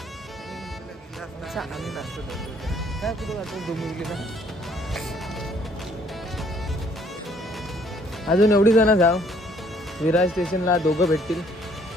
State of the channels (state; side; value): normal; both; correlation 0.63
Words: आम्ही नाचतो काय कुठं जातो डोंबिवलीला. अजून एवढी जण जाऊ. विरार स्टेशनला दोघं भेटतील,